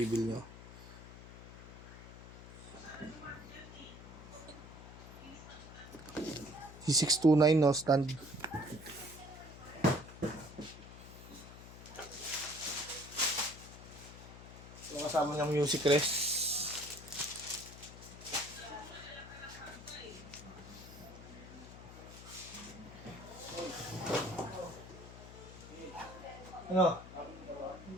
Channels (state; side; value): noise; left; hum, 15 dB below the sound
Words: nyo. C629 no stand. Yung kasama niyang music rest. Ano?